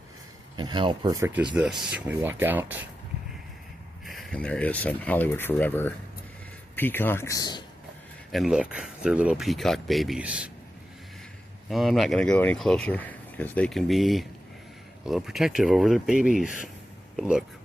And how perfect is this? We walk out, and there is some Hollywood Forever peacocks. And look, they're little peacock babies. I'm not going to go any closer because they can be a little protective over their babies. But look,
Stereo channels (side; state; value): both; normal; correlation 0.91